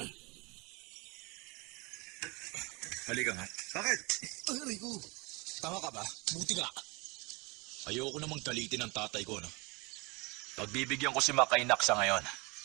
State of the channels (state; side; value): quieter; left; 27.4 dB